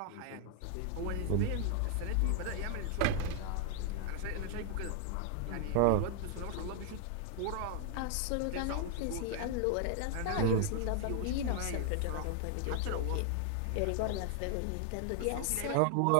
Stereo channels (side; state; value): both; different; correlation 0.00